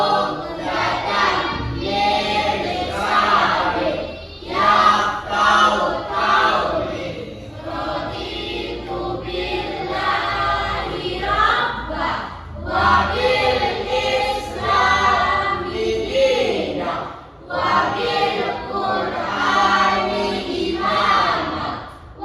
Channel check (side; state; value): both; identical; correlation 1.00